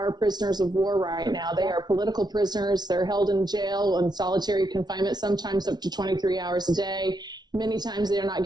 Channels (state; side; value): late; left; 0.20 ms